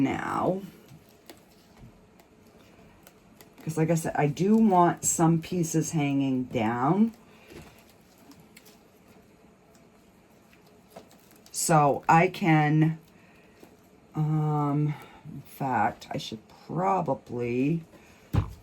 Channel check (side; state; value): both; identical; correlation 1.00